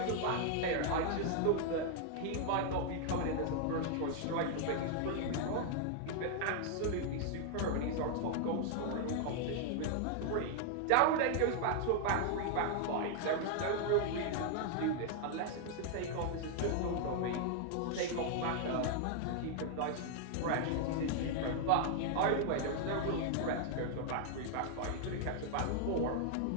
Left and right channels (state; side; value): different; both; correlation 0.00